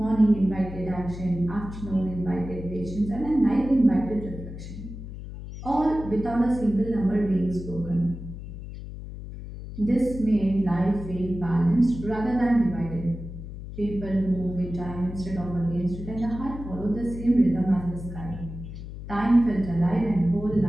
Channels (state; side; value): noise; left; hum, 10 dB below the sound